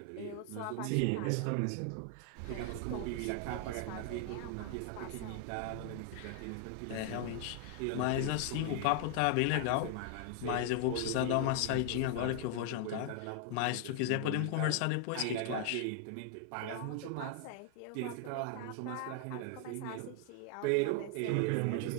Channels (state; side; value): different; both; correlation 0.00